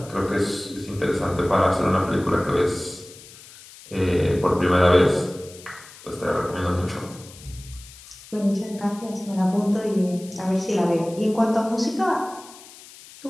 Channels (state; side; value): noise; left; hiss, 19 dB below the sound